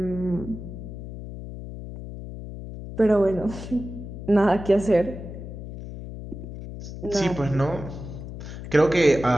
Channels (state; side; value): noise; left; hum, 10 dB below the sound